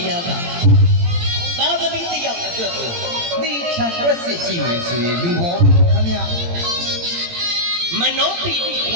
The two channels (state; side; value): late; left; 18 ms